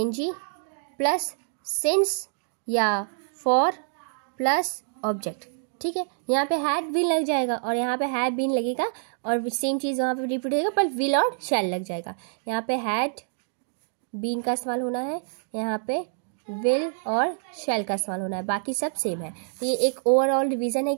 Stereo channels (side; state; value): left; silent; digital silence